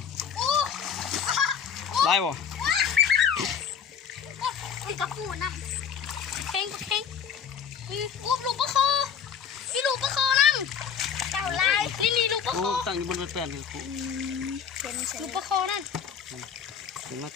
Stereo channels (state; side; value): quieter; right; 7.5 dB